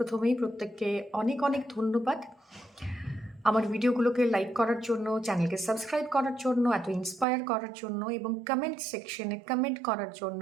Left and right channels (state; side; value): drops out; left; at 7.2 s